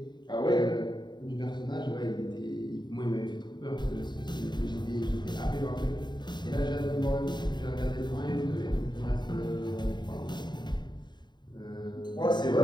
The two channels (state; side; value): late; right; 0.21 ms